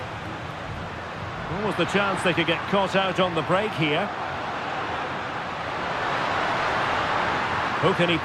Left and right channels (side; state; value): both; identical; correlation 1.00